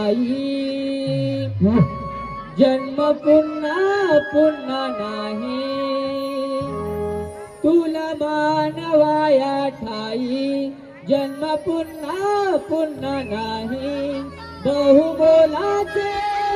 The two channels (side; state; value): both; identical; correlation 1.00